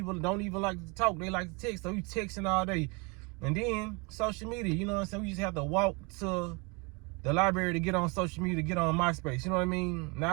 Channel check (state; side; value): quieter; left; 29.8 dB